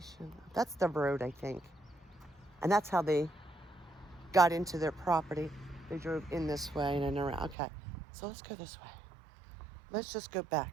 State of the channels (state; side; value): drops out; left; at 7.6 s